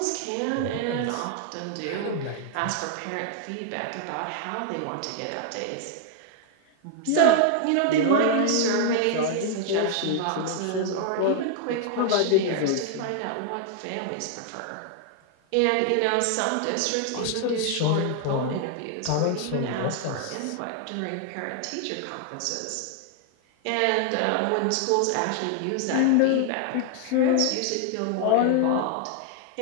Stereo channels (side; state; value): both; different; correlation 0.00